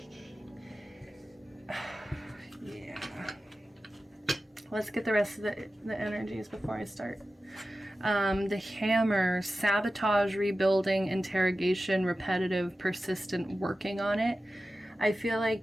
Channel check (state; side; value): normal; both; correlation 0.94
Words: yeah. Let's get the rest of the energies before I start. The hammer, sabotage, rebuilding, interrogation, repetitive, persistent, working on it. I feel